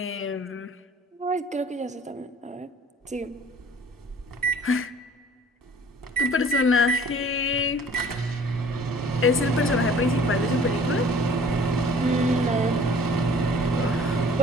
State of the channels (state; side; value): normal; both; correlation 0.52